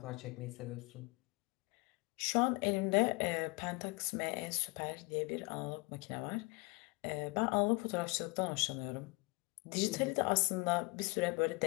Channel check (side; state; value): right; quieter; 27.9 dB